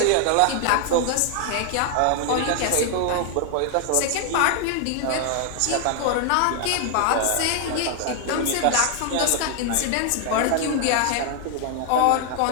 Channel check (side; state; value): both; different; correlation 0.00